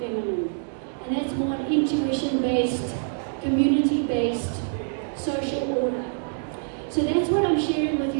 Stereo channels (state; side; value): silent; left; digital silence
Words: And that's more an intuition-based, community-based social order. So that's what I'm sharing with